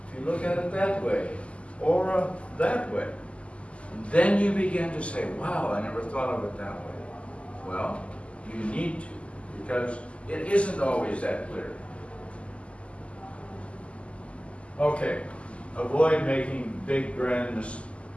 if you look at it that way, or that way, then you begin to say, wow, I never thought of it that way. Well, you need to, because it isn't always that clear. Okay, avoid making big, grand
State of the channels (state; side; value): late; right; 0.058 ms